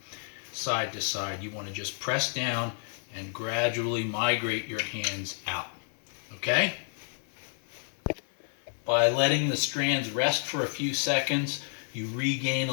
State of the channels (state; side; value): silent; right; 58 dB below the other